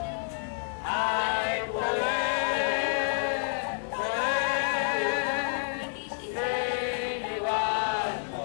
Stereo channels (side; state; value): right; silent; digital silence